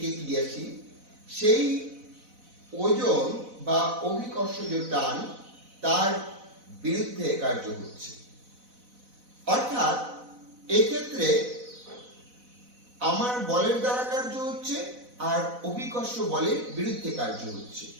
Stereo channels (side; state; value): left; late; 4.0 ms